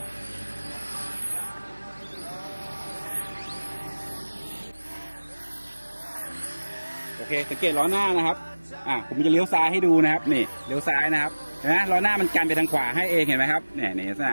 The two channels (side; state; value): both; inverted; correlation -1.00